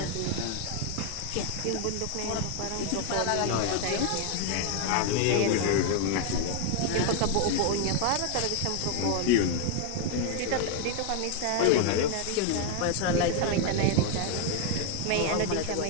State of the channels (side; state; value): both; different; correlation 0.01